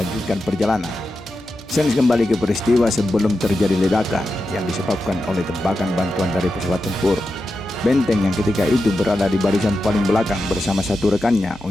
perjalanan. Sens kembali ke peristiwa sebelum terjadi ledakan yang disebabkan oleh tembakan bantuan dari pesawat tempur. Benteng yang ketika itu berada di barisan paling belakang bersama satu rekannya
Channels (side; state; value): left; noise; hum, 24 dB below the sound